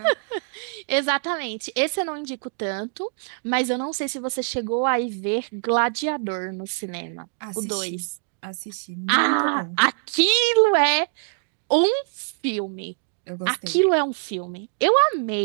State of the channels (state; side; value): silent; left; 62 dB below the other